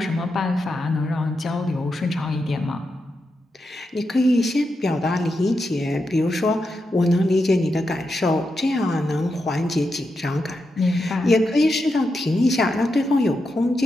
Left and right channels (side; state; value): both; normal; correlation 0.86